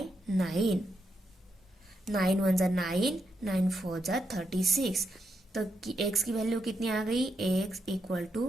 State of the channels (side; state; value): both; normal; correlation 0.81